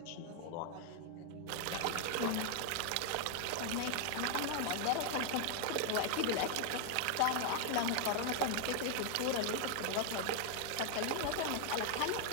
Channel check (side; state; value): both; different; correlation 0.00